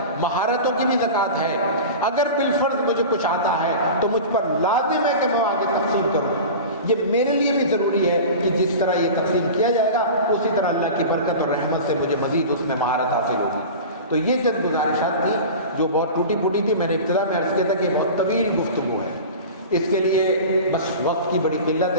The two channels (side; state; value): both; inverted; correlation -0.33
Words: مہارتوں کی بھی زکوٰۃ ہے۔ اگر بالفرض مجھے کچھ آتا ہے تو مجھ پر لازم ہے کہ میں آگے تقسیم کروں۔ یہ میرے لیے بھی ضروری ہے کہ جس طرح یہ تقسیم کیا جائے گا اسی طرح اللہ کی برکت اور رحمت سے مجھے مزید اس میں مہارت حاصل ہوگی۔ تو یہ چند گزارشات تھیں جو بہت ٹوٹی پھوٹی تھی۔ میں نے ابتدا میں عرض کیا تھا کہ بہت طویل گفتگو ہے، اس کے لیے بس وقت کی بڑی قلت